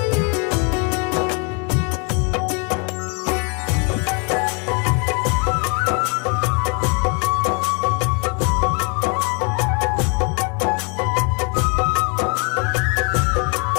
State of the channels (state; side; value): quieter; right; 35.1 dB